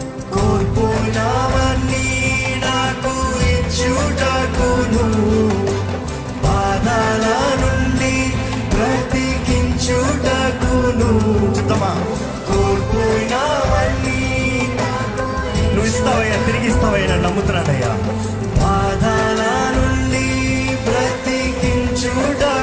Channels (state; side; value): identical; both; correlation 1.00